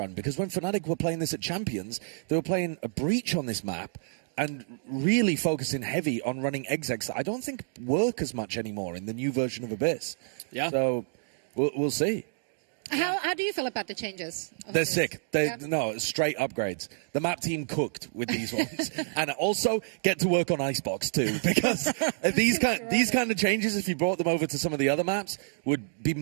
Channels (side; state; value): left; silent; digital silence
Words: because when FNATIC were playing this at Champions, they were playing a breach on this map and really focusing heavy on running execs that I don't think work as much anymore in the new version of Abyss. Yeah. So we'll see. How do you feel about the changes? They're sick. No, straight upgrades. The map team cooked with these ones. And also get to work on Icebox too, because these kind of changes, if you brought them over to some of the other maps, would be